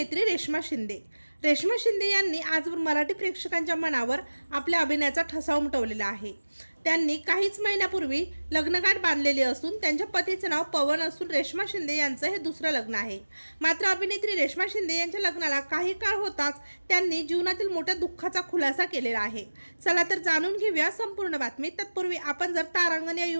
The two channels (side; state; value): both; inverted; correlation -1.00